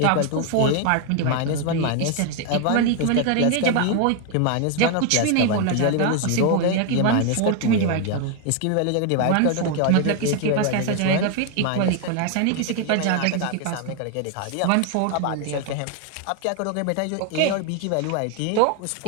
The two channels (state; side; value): different; both; correlation 0.01